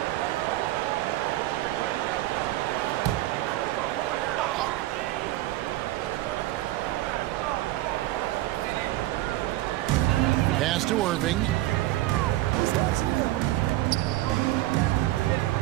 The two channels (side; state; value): left; quieter; 16.5 dB